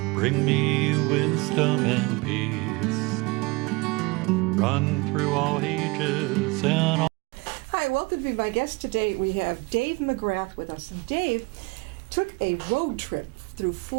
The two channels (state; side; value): quieter; left; 25.4 dB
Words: Bring me wisdom and peace. Run through all ages and all. Hi, welcome to be my guest today. We have Dave McGrath with us. And Dave took a road trip through